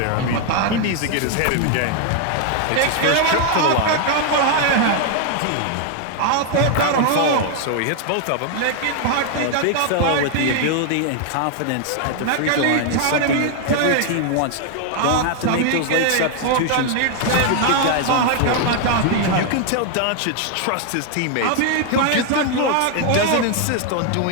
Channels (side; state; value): both; different; correlation 0.00